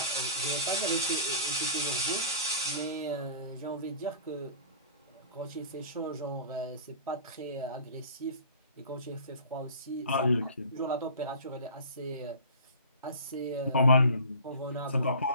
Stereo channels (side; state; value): both; inverted; correlation -0.41